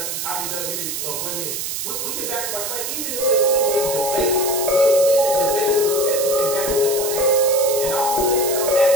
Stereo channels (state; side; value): noise; right; hiss, 4 dB below the sound